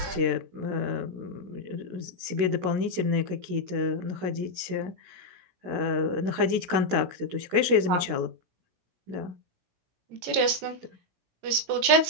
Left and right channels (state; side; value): late; left; 16 ms